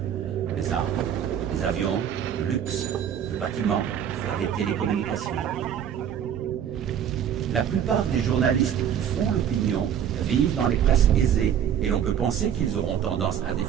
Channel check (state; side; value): quieter; left; 9.2 dB